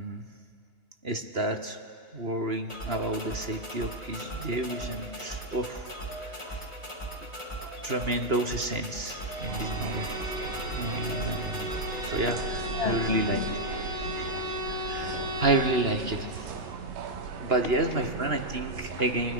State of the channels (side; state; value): left; late; 2.9 ms